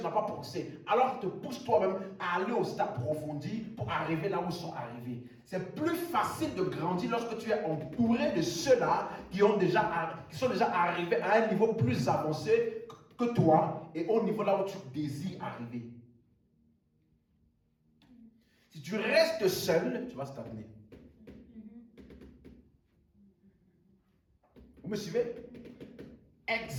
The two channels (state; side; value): identical; both; correlation 1.00